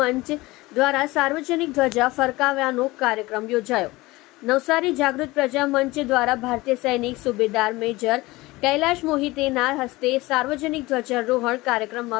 દ્વારા સાર્વજનિક ધ્વજા ફરકાવ્યાનો કાર્યક્રમ યોજાયો। નવસારી જાગૃત પ્રજા મંચ દ્વારા ભારતીય સૈનિક સુબેદાર મેજર કૈલાશ મોહિતેના હસ્તે સાર્વજનિક ધ્વજારોહણ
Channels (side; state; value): right; quieter; 20.5 dB